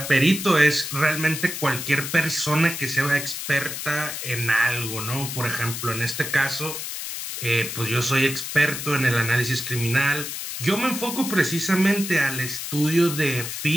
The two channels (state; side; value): noise; left; hiss, 6 dB below the sound